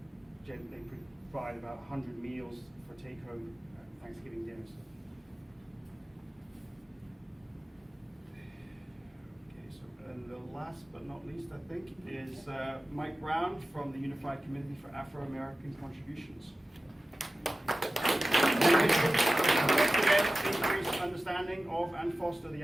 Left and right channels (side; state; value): both; normal; correlation 0.95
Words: provide about 100 meals for take-home Thanksgiving dinners. And the last but not least, I think, is Mike Brown from the Unified Committee for Afro-American Contributions. Increase understanding of and foster the